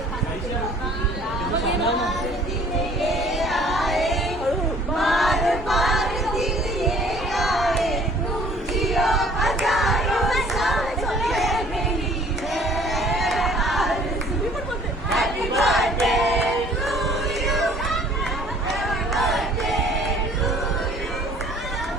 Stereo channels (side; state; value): both; normal; correlation 0.54